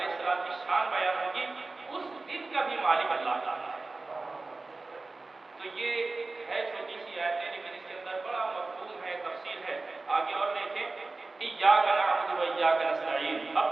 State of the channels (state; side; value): quieter; left; 3.5 dB